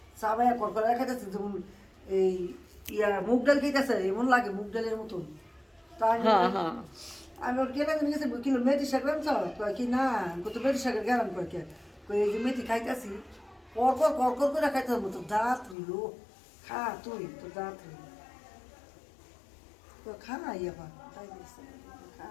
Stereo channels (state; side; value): drops out; right; at 15.8 s